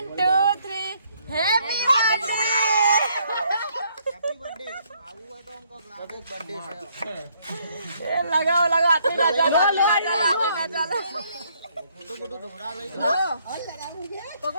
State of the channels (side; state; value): both; inverted; correlation -0.68